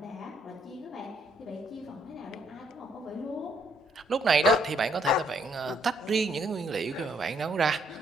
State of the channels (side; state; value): both; normal; correlation 0.70